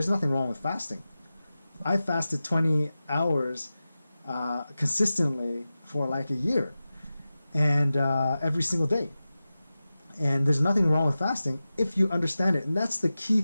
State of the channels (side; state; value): both; inverted; correlation -0.94